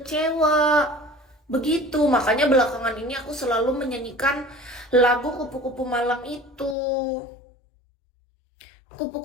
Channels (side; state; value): right; drops out; at 6.8 s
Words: Begitu, makanya belakangan ini aku selalu menyanyikan lagu kupu-kupu malam itu.